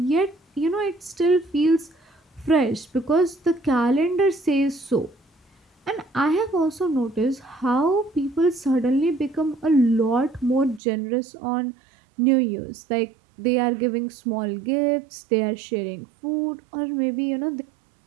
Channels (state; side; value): drops out; left; at 10.8 s